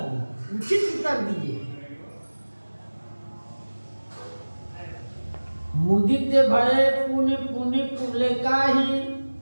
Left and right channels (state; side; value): inverted; both; correlation -1.00